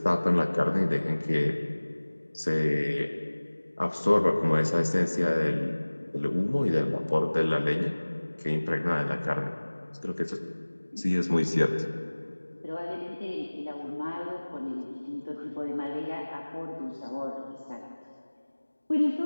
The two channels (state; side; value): inverted; both; correlation -1.00